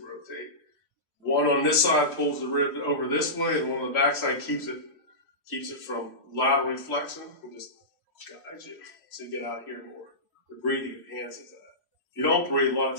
One on this side pulls the rib over this way, and one on the back side keeps it from lateral flexion and just guides you so you get out here more. The breathing enhances that. If you don't breathe, a lot of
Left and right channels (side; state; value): right; late; 3.1 ms